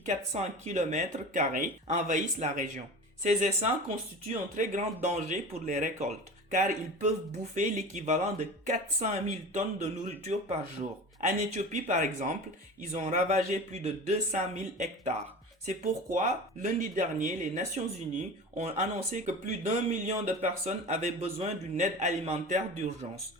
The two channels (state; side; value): normal; both; correlation 0.33